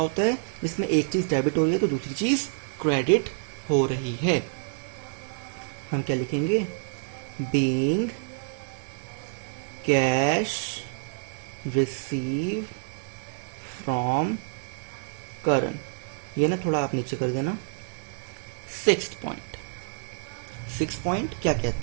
है? इसमें एक चीज डेबिट हो रही है तो दूसरी चीज क्रेडिट हो रही है। हम क्या लिखेंगे? Being cash receive from current. ये ना थोड़ा आप नीचे कर देना। सिक्स्थ पॉइंट क्या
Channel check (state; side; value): silent; left; digital silence